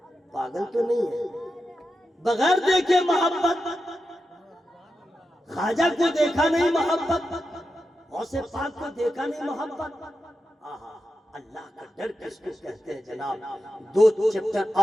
پاگل تو نہیں ہے. بغیر دیکھے محبت. خواجہ کو دیکھا نہیں محبت، غوث پاک کو دیکھا نہیں محبت. آہا اللہ کا ڈر کس کو کہتے ہیں جناب. 2 چیپٹر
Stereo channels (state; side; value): normal; both; correlation 0.89